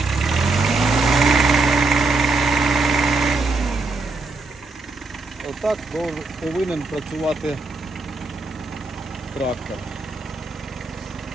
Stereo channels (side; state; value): left; quieter; 3.6 dB